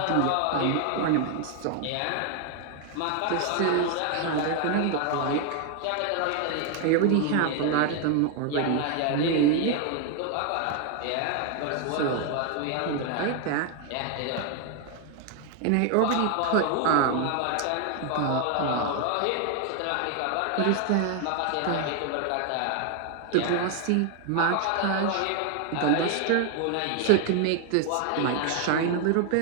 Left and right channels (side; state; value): both; different; correlation 0.00